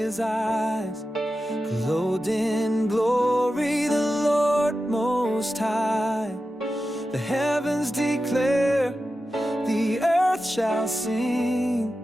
eyes, clothed in glory, the Lord Most High. The heavens declare, the earth shall sing,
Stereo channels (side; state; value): both; normal; correlation 0.92